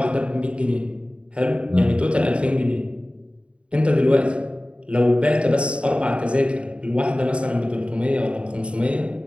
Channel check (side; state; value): left; late; 0.058 ms